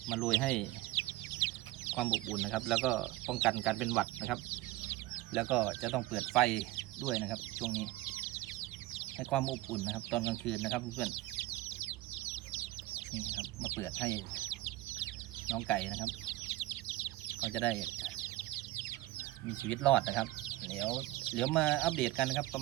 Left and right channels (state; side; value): quieter; left; 17.4 dB